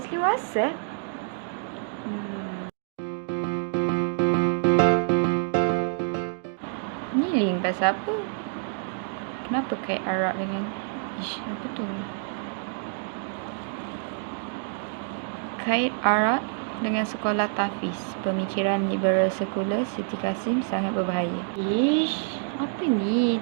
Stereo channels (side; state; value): left; silent; digital silence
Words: Wasef? Ni link pasal apa? Kenapa kait Arab dengan... apa tu? Kait Arab dengan sekolah tahfiz. Pemikiran liberal sekular Siti Kasim sangat berbahaya. Apa ni?